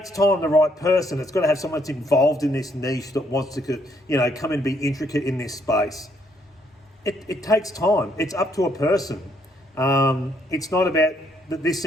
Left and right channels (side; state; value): both; normal; correlation 0.70